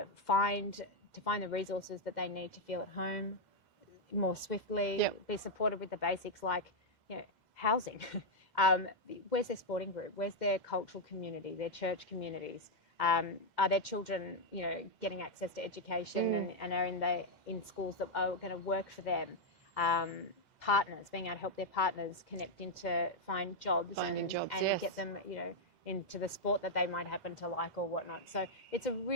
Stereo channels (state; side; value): late; left; 2.0 ms